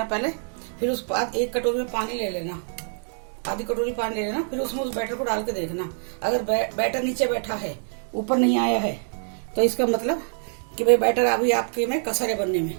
पहले, फिर उस बाद 1 कटोरी में पानी ले लेना, आधी कटोरी पानी ले लेना, फिर उसमें उस बैटर को डाल के देखना। अगर बैटर नीचे बैठा है, ऊपर नहीं आया है, तो इसका मतलब कि भाई बैटर अभी आपके में कसर है बनने में।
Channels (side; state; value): left; silent; digital silence